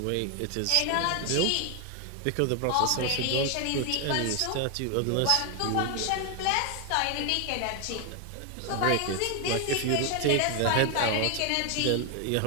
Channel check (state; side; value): different; both; correlation 0.01